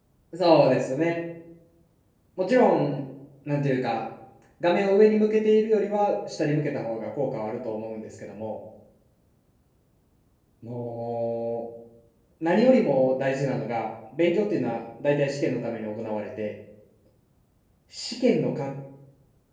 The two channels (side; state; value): both; identical; correlation 1.00